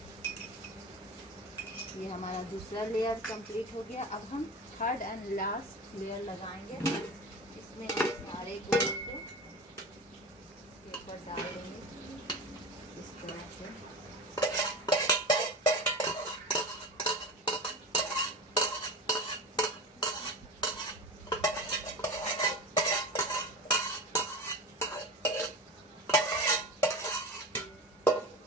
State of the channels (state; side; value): normal; both; correlation 0.29